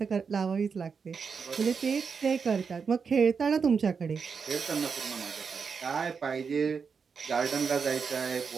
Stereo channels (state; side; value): quieter; left; 5.7 dB